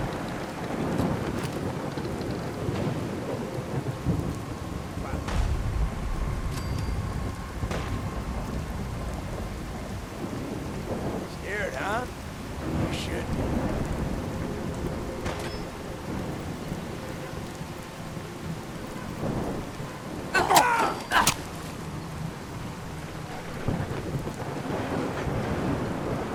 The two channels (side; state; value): both; identical; correlation 1.00